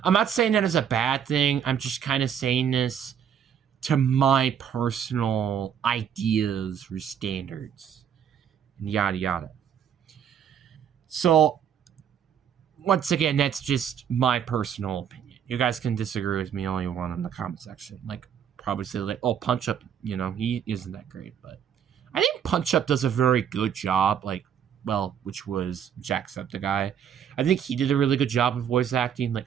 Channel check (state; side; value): quieter; left; 8.6 dB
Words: not saying that as a bad thing. I'm just kind of saying this to my personal ideas or standards, and yada yada. So, once again, that's just my personal opinion. You guys can disagree with me all you want in the comment section. Probably say oh, Punch Up, he isn't that great. But I think Punch Up does a very good job, which was Jacksepticeye. I think he did a really good job of voice acting.